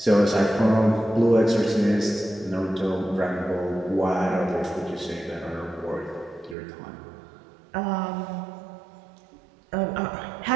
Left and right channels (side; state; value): left; drops out; at 6.6 s